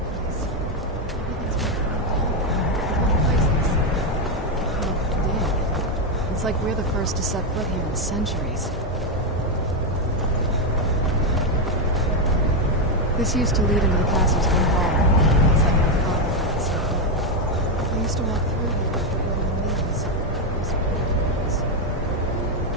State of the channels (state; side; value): normal; both; correlation 0.05